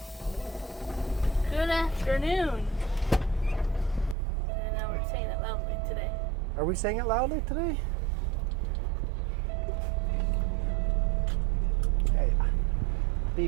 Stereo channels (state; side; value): drops out; left; at 4.2 s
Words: Good afternoon. And now we're saying it loudly today. Are we saying it loudly today? Hey,